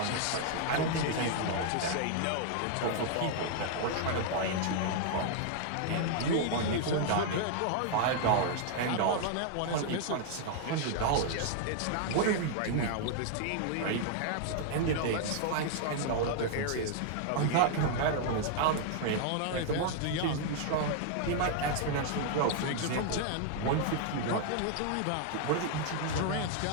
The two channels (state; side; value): different; both; correlation 0.00